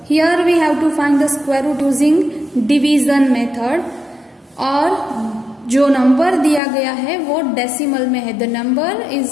Here we have to find the square root using division method. और जो number दिया गया है वो decimal में है. The number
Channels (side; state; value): right; drops out; at 6.6 s